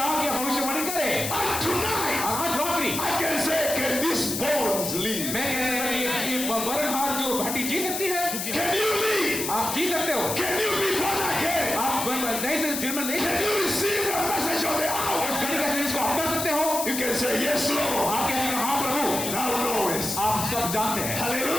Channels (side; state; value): left; noise; hiss, 3 dB below the sound